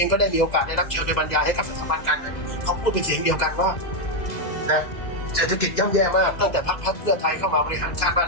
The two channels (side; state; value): right; late; 2.0 ms